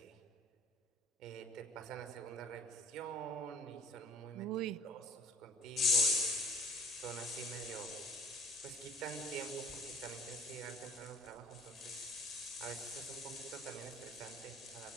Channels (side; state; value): both; normal; correlation 0.54